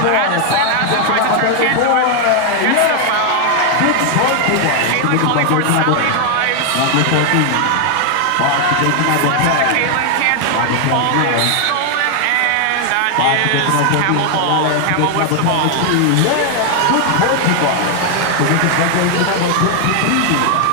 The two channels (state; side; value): different; both; correlation 0.00